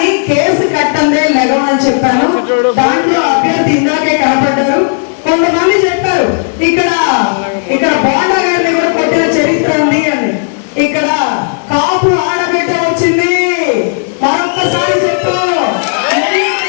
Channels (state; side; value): silent; right; digital silence